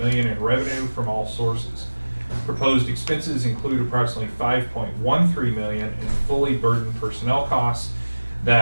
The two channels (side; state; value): both; inverted; correlation -1.00